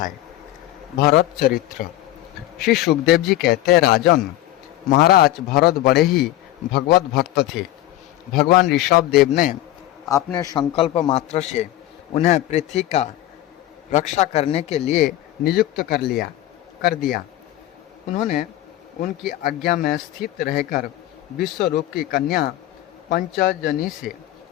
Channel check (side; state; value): right; quieter; 14.8 dB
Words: भरत चरित्र। श्री सुखदेव जी कहते हैं, राजन, महाराज भरत बड़े ही भगवत भक्त थे। भगवान ऋषभ देव ने अपने संकल्प मात्र से उन्हें पृथ्वी का रक्षा करने के लिए नियुक्त कर दिया। उन्होंने उनकी आज्ञा में स्थित रहकर विश्वरूप की कन्या पंचजनी से